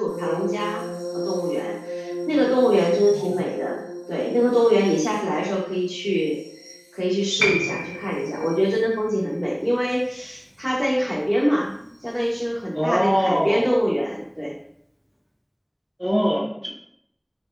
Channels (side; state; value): both; identical; correlation 1.00